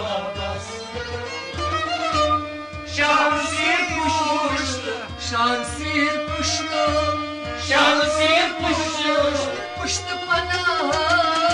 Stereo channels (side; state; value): both; identical; correlation 1.00